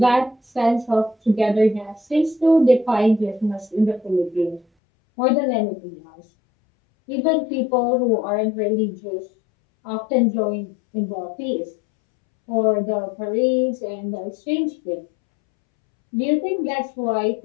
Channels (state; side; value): drops out; right; at 4.7 s